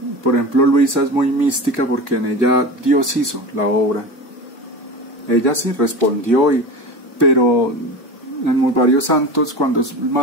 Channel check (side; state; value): both; normal; correlation 0.29